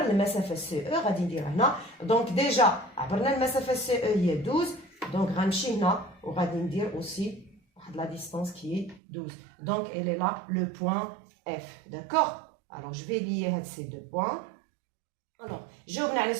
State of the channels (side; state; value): left; drops out; at 9.0 s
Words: المسافه سي او. غادي ندير هنا دونك ديجا عبرنا المسافه سي او هي 12. دونك غنمشي هنا وغادي ندير اوسي واحد لا ديستانس كي 12. دونك elle est là le point F. D'accord? Alors je vais lier هاد ces deux points. Alors, جاوبنا على